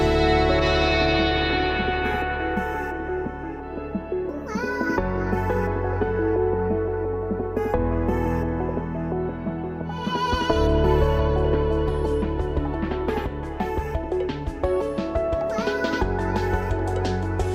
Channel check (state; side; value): identical; both; correlation 1.00